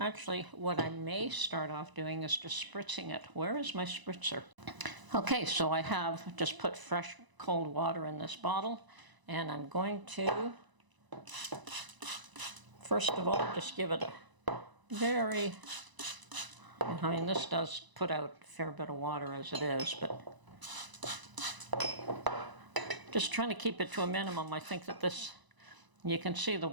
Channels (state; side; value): late; left; 1.0 ms